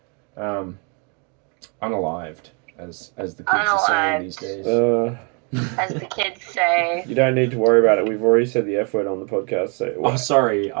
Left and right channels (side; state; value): left; quieter; 35.1 dB